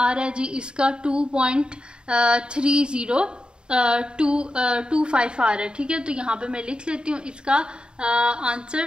रहा है जी इसका 2.3025 आ रहा है। ठीक है, तो यहाँ पे मैं लिख लेती हूँ इसका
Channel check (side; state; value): left; late; 0.050 ms